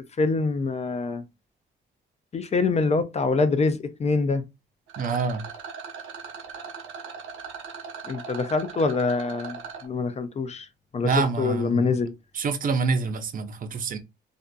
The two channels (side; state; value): both; normal; correlation 0.55